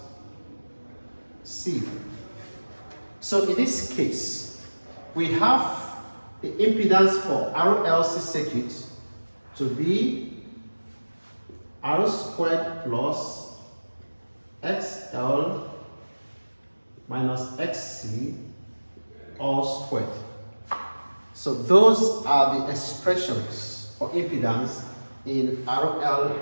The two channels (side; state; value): both; inverted; correlation -1.00